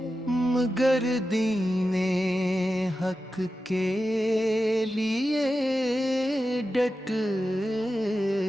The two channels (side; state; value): both; normal; correlation 0.92